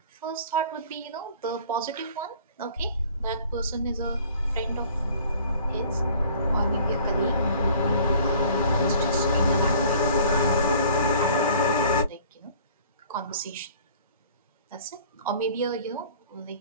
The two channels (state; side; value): inverted; both; correlation -0.50